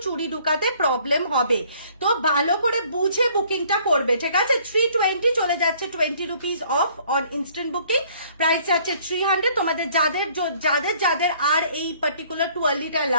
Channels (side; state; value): both; inverted; correlation -0.59